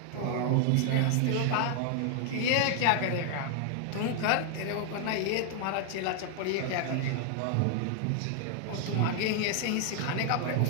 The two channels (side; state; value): both; different; correlation 0.00